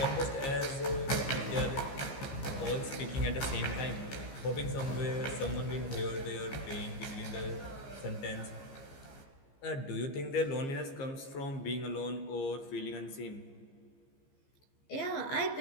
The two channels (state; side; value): late; right; 15 ms